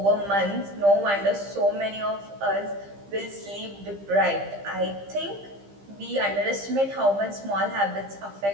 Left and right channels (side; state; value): left; late; 15 ms